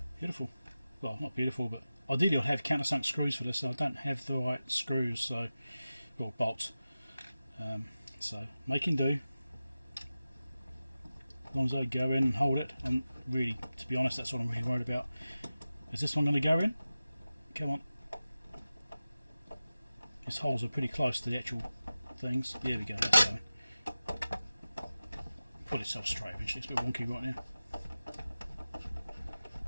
Beautiful. Well, not beautiful, but ideally I'd have countersunk screws for this, so I don't have the right screws, so. Or bolts. So making do. As long as I go in and hold it, and really, to be honest, that's what I'm really worried about. Is this one going to go in? Come on. These holes are pretty close to the actual things. There we go, that's going. Put itself straight eventually, it's a bit wonky right now.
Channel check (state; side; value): inverted; both; correlation -0.95